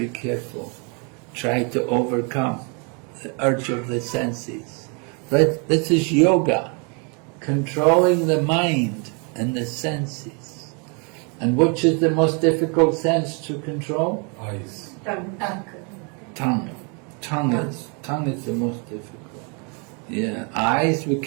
careful. Try to overcome the urge of the senses. But this is yoga, controlling the mind and the senses. And which is the most difficult sense to control? eyes. Tongue. Tongue is the most difficult. Yeah, eyes, we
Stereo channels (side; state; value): left; quieter; 35.1 dB